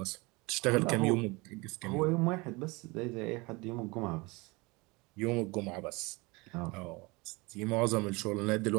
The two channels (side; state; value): left; quieter; 25.2 dB